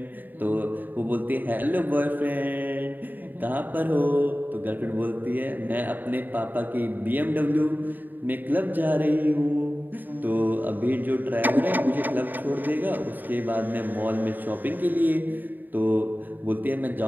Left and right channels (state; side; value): late; left; 0.089 ms